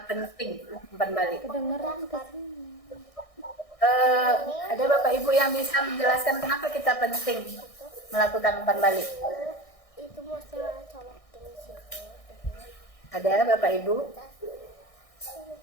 penting umpan balik? Kedengeran ke sini. Ada Bapak Ibu yang bisa menjelaskan kenapa kita penting melakukan umpan balik? Itu masalah colokin situ. Ada Bapak Ibu?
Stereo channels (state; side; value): late; right; 1.6 ms